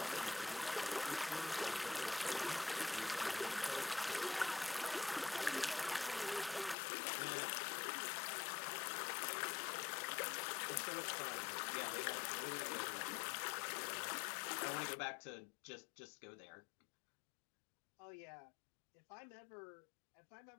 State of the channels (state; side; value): drops out; right; at 6.8 s